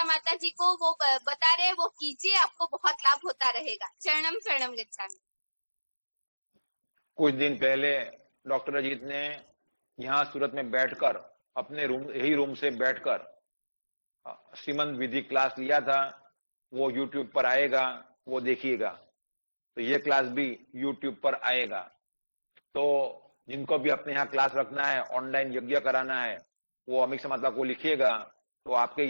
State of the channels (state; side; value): inverted; both; correlation -1.00